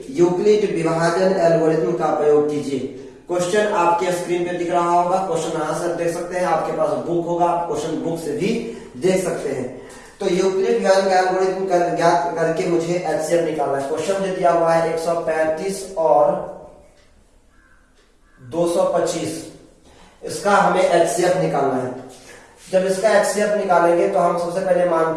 यूक्लिड विभाजन एल्गोरिथम का प्रयोग कीजिए। क्वेश्चन आपके स्क्रीन पे दिख रहा होगा, क्वेश्चन यहाँ से देख सकते हैं, आपके पास बुक होगा, आप क्वेश्चन बुक से भी देख सकते हैं। तो यूक्लिड विभाजन का एल्गोरिथम ज्ञात करके मुझे HCF निकालना है। क्वेश्चन जो दिया हुआ है 135 और 225, इसका हमें HCF निकालना है। जब इसका HCF निकालेंगे तो हम सबसे पहले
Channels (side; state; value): both; identical; correlation 1.00